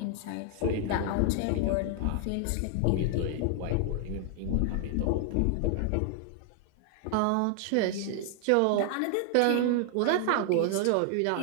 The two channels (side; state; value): both; different; correlation 0.00